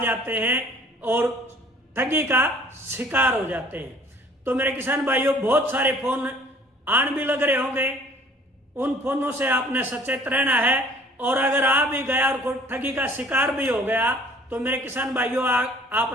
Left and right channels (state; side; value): normal; both; correlation 0.53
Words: हैं और ठगी का शिकार हो जाते हैं। तो मेरे किसान भाइयों, बहुत सारे फोन आन भी लग रहे होंगे, उन फोनों से आपने सचेत रहना है। और अगर आ भी गया और ठगी का शिकार भी हो गया तो मेरे किसान भाइयों